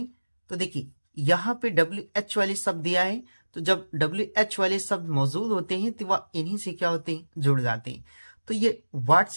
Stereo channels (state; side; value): inverted; both; correlation -1.00